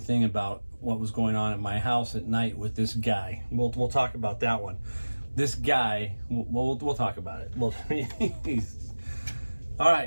about what was going on at my house at night with this guy. We'll talk about that one. this guy, we'll talk about it. Well, all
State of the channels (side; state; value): both; inverted; correlation -1.00